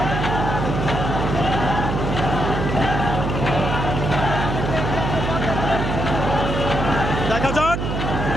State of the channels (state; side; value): noise; right; hum, 2 dB below the sound